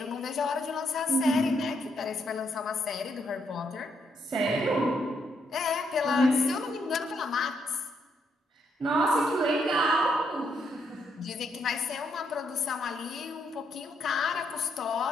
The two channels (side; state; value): both; normal; correlation 0.76